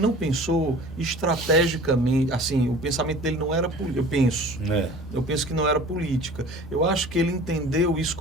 pensou estrategicamente, assim, o pensamento dele não era político, eu penso que não era política. Eu acho que ele entendeu isso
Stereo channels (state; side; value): normal; both; correlation 0.44